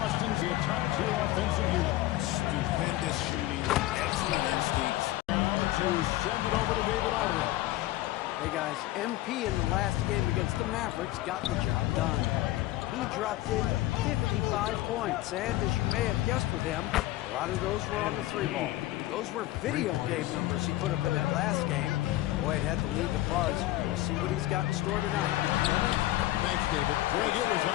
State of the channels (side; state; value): right; quieter; 16.2 dB